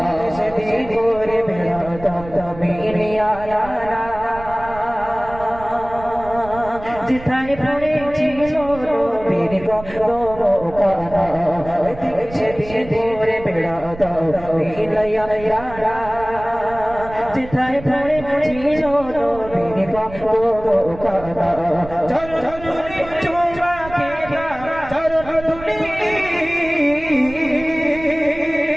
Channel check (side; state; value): right; noise; rumble, 15 dB below the sound